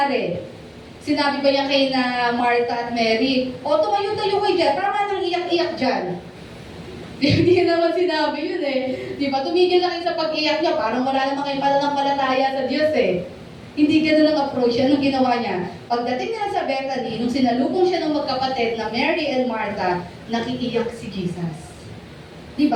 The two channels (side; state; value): both; identical; correlation 1.00